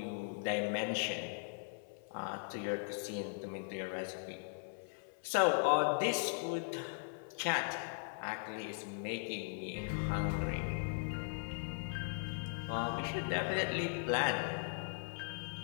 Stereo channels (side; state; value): right; silent; 52 dB below the other